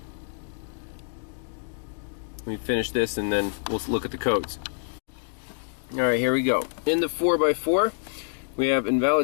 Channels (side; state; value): right; silent; digital silence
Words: me finish this and then we'll look at the codes. Alright, here we go. In the 4x4, we have